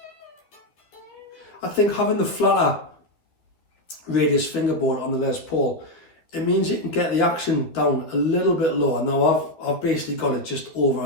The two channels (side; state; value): right; late; 12 ms